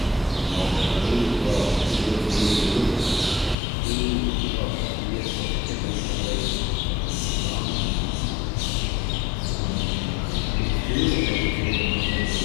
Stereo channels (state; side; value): drops out; right; at 3.6 s